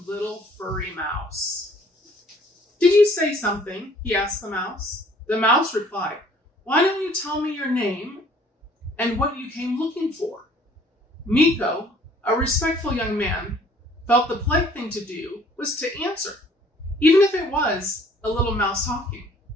furry mouse. "Did you say something?" he asked the mouse. The mouse replied, "Why don't you tell me your name and what you came looking for?" Mikko, a respectful young man, felt the polite thing to do was to answer, even if it was a little mouse talking.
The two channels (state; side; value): normal; both; correlation 0.57